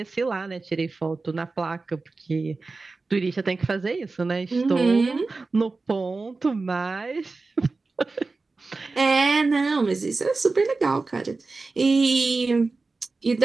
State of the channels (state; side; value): quieter; left; 3.8 dB